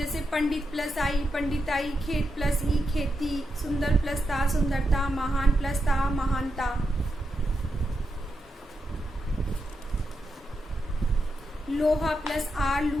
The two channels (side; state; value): both; normal; correlation 0.86